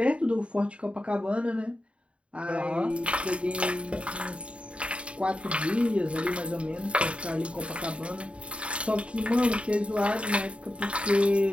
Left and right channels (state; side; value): late; left; 0.060 ms